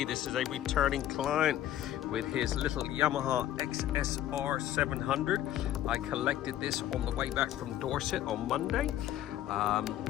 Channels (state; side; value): quieter; right; 12.3 dB